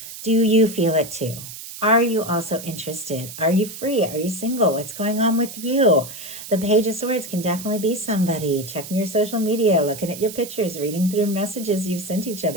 do you feel it too? Are you also interested? Are you free? Are you single? What's going on with you? The Page of Swords can definitely be somebody checking your social media, looking at your pictures, reading through messages you've sent each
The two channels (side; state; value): right; noise; hiss, 12 dB below the sound